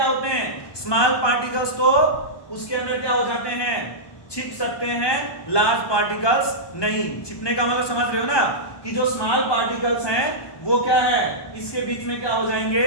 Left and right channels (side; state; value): right; late; 1.2 ms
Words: होते हैं? स्मॉल पार्टिकल्स तो उसके अंदर क्या हो जाते हैं? छिप सकते हैं। लार्ज पार्टिकल्स नहीं। छिपने का मतलब समझ रहे हो ना, कि जो स्मॉल पार्टिकल्स हैं वो क्या है? इसके बीच में क्या हो